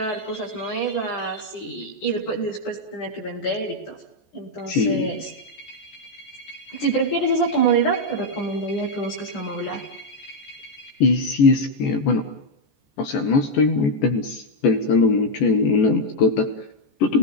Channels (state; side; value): late; right; 14 ms